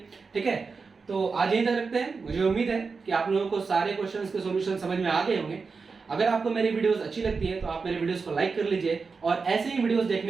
ठीक है, तो आज यहीं तक रखते हैं। मुझे उम्मीद है कि आप लोगों को सारे क्वेश्चंस के सॉल्यूशन समझ में आ गए होंगे। अगर आपको मेरी वीडियोस अच्छी लगती है तो आप मेरे वीडियोस को लाइक कर लीजिए और ऐसे ही वीडियोस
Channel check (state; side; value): quieter; left; 4.8 dB